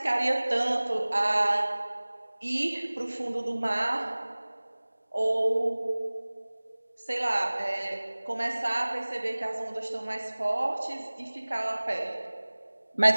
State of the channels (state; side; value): inverted; both; correlation -1.00